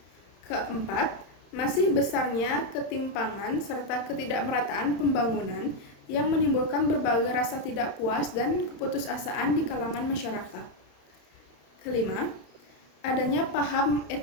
Keempat, masih besarnya ketimpangan serta ketidakmerataan pembangunan yang menimbulkan berbagai rasa tidak puas dan keputusasaan di kalangan masyarakat. Kelima, adanya paham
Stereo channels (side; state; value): right; late; 31 ms